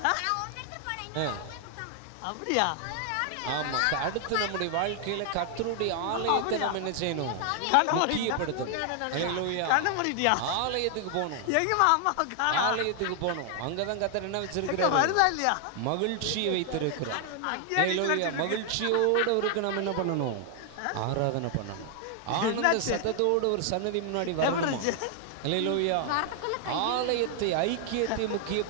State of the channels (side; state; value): both; different; correlation 0.00